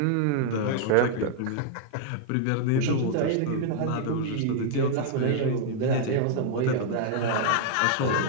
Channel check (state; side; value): different; both; correlation -0.01